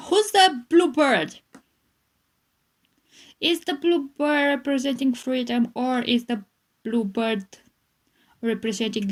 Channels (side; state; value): both; identical; correlation 1.00